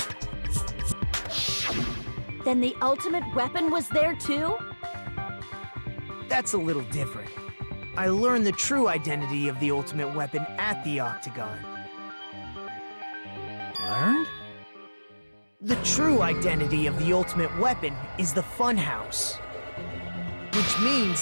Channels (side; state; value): both; inverted; correlation -1.00